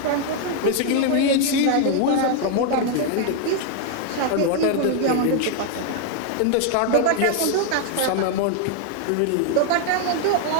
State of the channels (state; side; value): different; both; correlation 0.00